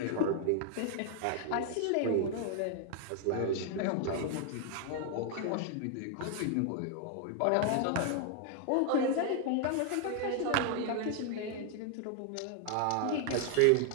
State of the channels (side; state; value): both; different; correlation 0.00